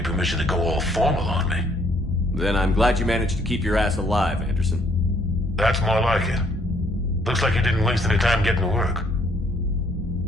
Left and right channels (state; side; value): normal; both; correlation 0.66